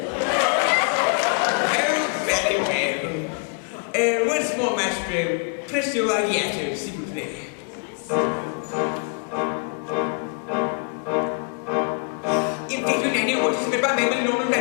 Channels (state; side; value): quieter; right; 37.5 dB